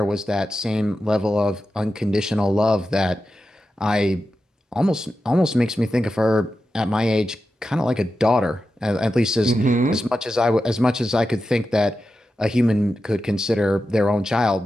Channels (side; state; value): both; normal; correlation 0.91